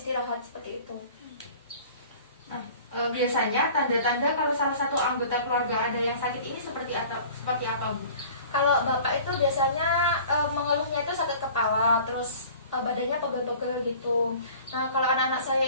seperti itu. Nah, biasanya tanda-tanda kalau salah satu anggota keluarga ada yang sakit ini seperti apa, Bu? Kalau Bapak itu biasanya mengeluhnya itu sakit kepala, terus badannya pegel-pegel gitu. Nah, kalau anak-anak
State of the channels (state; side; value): inverted; both; correlation -0.46